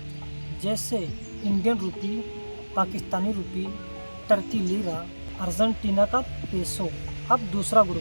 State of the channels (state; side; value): inverted; both; correlation -1.00